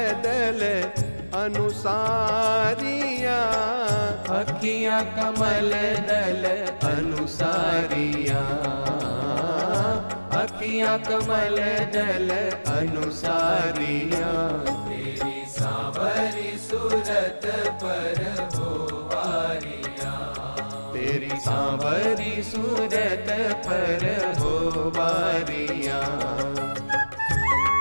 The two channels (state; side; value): inverted; both; correlation -1.00